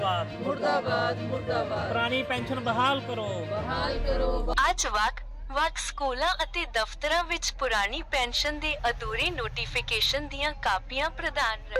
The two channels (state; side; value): identical; both; correlation 1.00